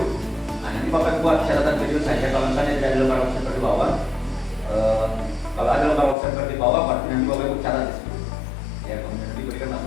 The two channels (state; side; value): drops out; right; at 6.2 s